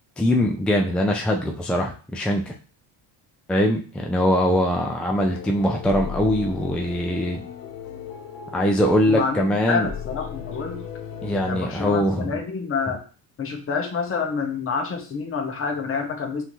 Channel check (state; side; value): normal; both; correlation 0.59